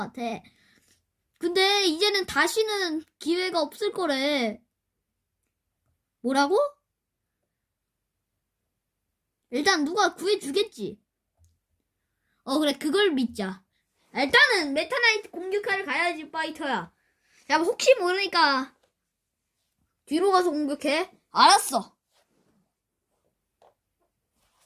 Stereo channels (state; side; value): identical; both; correlation 1.00